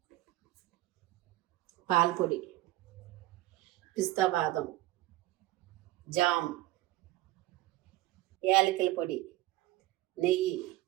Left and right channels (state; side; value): quieter; left; 17.4 dB